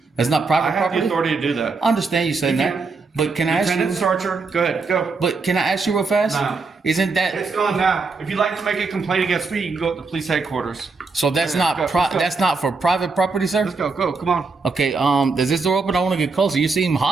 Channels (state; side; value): quieter; left; 4.2 dB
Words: That's not I private have property. the authority to do that. I understand you saying You that, can. but can I ask Lieutenant you? Starcher, go ahead, go. But can I ask you real fast? No. Isn't that It's gone now. If you'd like to make a complaint against me, you can go to the police headquarters. so? That's Let's not go, let's go. that's not for private property, sir. Let's go, come on. Okay. Does this door open? I want to get closer. You seem